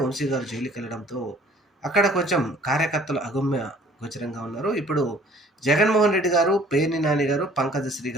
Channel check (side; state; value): both; normal; correlation 0.54